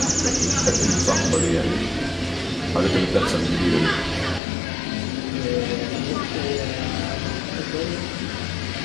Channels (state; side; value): drops out; right; at 4.4 s